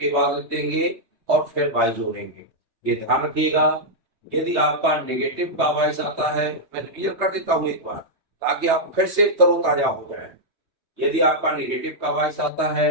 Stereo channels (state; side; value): late; left; 3.3 ms